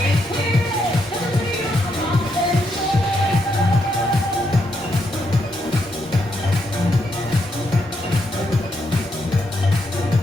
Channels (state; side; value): normal; both; correlation 0.78